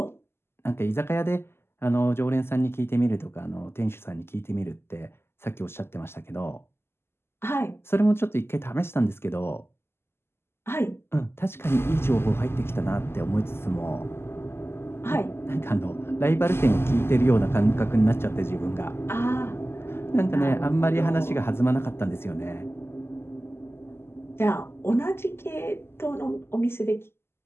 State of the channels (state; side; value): late; right; 0.12 ms